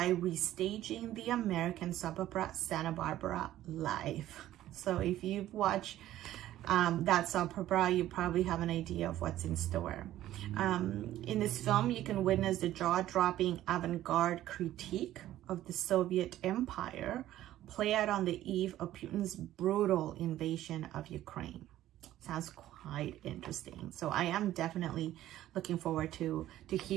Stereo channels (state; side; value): quieter; left; 13.6 dB